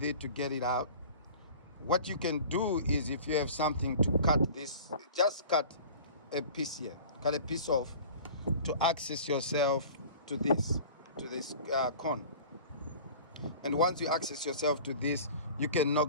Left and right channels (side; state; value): both; inverted; correlation -0.41